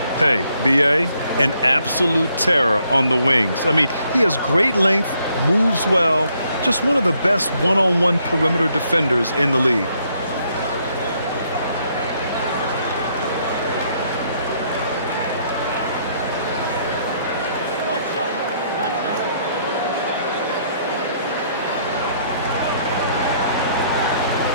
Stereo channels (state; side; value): inverted; both; correlation -0.70